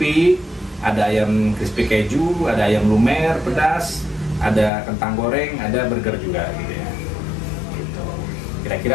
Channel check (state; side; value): drops out; right; at 4.7 s